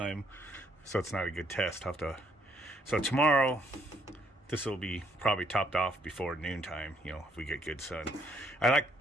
So it's not a good test. So tomorrow, this will be probably topped off before noontime, you know, if we get good sun. I like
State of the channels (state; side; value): normal; both; correlation 0.69